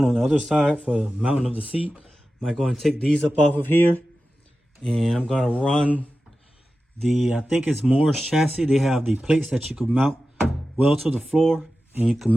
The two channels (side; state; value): both; normal; correlation 0.93